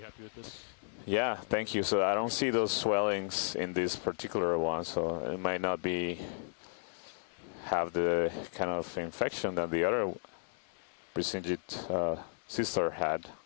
happy with this? Yeah, On the thank radar? you. So I don't Okay, see those zoom out. swellings in this particular one, so it might not have the kind of infection that the other Presinged sister had.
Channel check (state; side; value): silent; right; digital silence